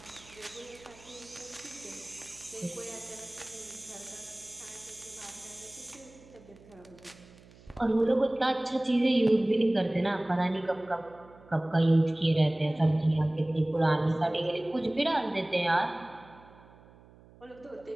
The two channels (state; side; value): noise; right; hum, 24 dB below the sound